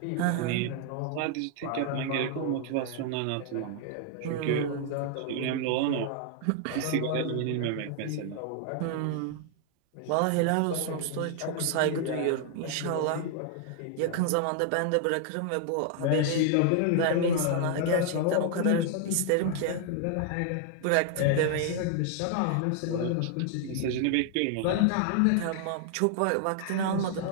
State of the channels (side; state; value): both; different; correlation 0.00